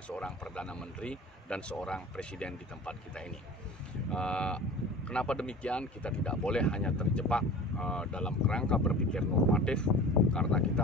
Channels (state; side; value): normal; both; correlation 0.40